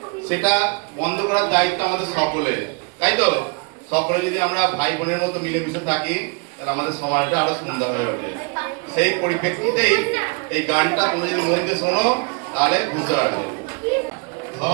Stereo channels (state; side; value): quieter; left; 31.1 dB